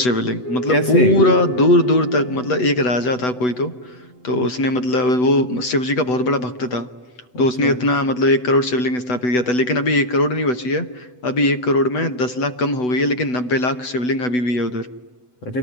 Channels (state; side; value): late; right; 8.0 ms